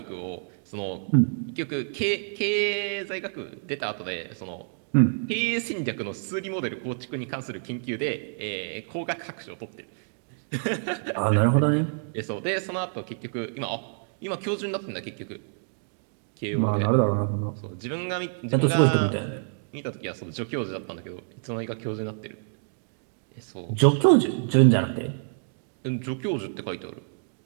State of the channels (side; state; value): left; silent; digital silence